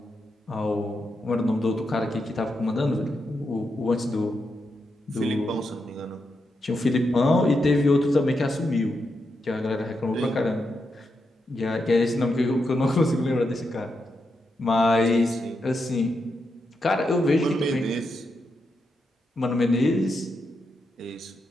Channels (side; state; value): both; normal; correlation 0.85